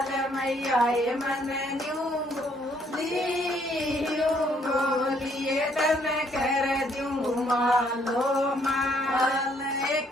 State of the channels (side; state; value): both; normal; correlation 0.67